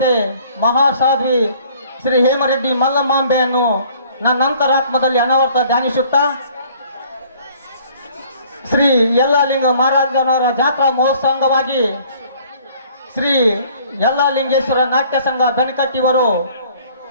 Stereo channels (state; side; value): inverted; both; correlation -0.56